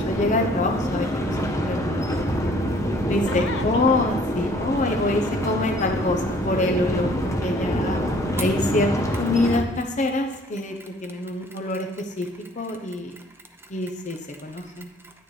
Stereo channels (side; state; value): both; normal; correlation 0.57